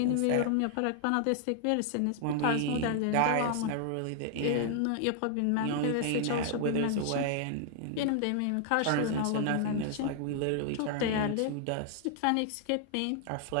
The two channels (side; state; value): both; different; correlation 0.00